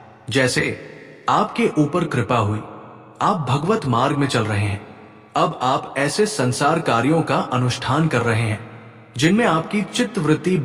जैसे आपके ऊपर कृपा हुई, आप भगवत मार्ग में चल रहे हैं, अब आप ऐसे संसार कार्यों का अनुष्ठान कर रहे हैं जिनमें आपकी चित्त वृत्ति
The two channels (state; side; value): identical; both; correlation 1.00